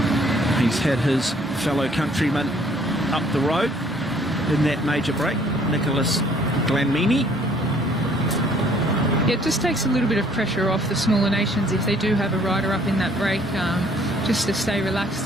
He's had his fellow countryman up the road in that major break, Nicholas Glanmini. Yeah, it just takes a little bit of pressure off the smaller nations if they do have a rider up in that break, just to stay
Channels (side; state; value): both; normal; correlation 0.60